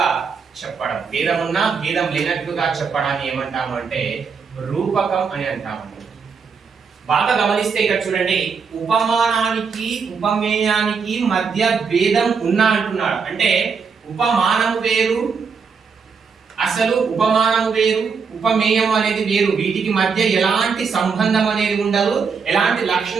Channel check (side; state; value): left; quieter; 5.6 dB